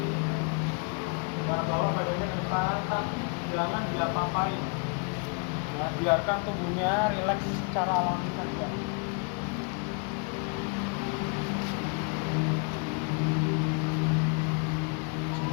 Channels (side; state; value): right; quieter; 36.4 dB